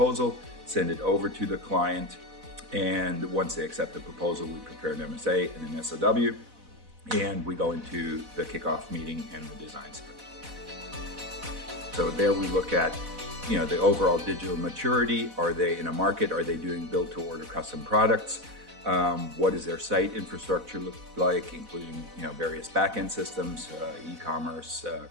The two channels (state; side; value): late; left; 4.0 ms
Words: send it over to the client, and once they accept the proposal, we prepare an MSA and an SOW, and we go into the kickoff meeting and the design sprint. So there we look at, the overall digital maturity. Are they in a market? Are they doing build-to-order custom products? What does their site infrastructure look like, including various back-end systems, e-commerce,